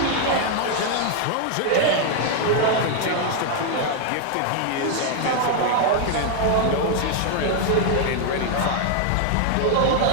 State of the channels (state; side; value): different; both; correlation 0.00